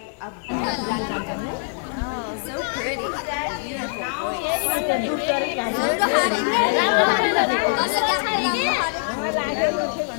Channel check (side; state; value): right; silent; digital silence